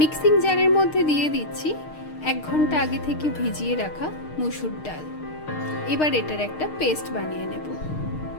জারের মধ্যে দিয়ে দিচ্ছি 1 ঘন্টা আগে থেকে ভিজিয়ে রাখা মুসুর ডাল। এবার এটার একটা পেস্ট বানিয়ে নেব।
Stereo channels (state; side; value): late; right; 6.5 ms